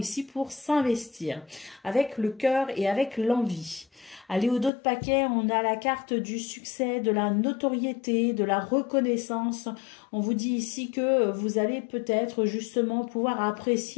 pour s'investir avec le cœur et avec l'envie. Allez, au dos de paquet, on a la carte du succès, de la notoriété, de la reconnaissance. On vous dit ici que vous allez peut-être justement pouvoir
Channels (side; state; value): right; drops out; at 4.7 s